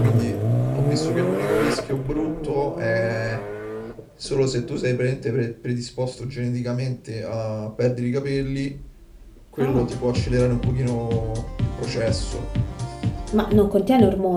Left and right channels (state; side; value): identical; both; correlation 1.00